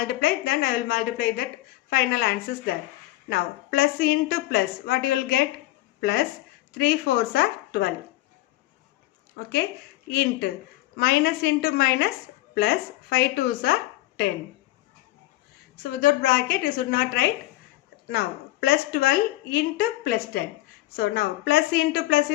then I will multiply that final answers there. Now plus into plus, what you will get? Plus 3 4s are 12. Okay. Into minus plus 5 2s are 10. So without bracket you should not write. Now plus 12 into plus 10. So now plus into plus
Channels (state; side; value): quieter; right; 17.4 dB